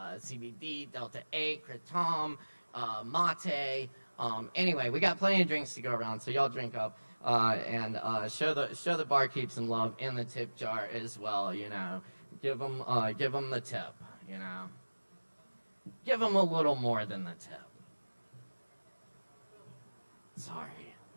Delta 8, Kratom, mate. Anyway, we got plenty of drinks to go around, so y'all drink up and show the barkeep some love in the tip jar as well. You know, give them the tip. You know, give them a little more than the tip. Sorry.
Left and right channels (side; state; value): both; inverted; correlation -1.00